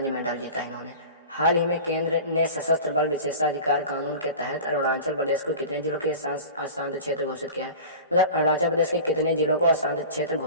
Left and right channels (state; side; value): inverted; both; correlation -0.36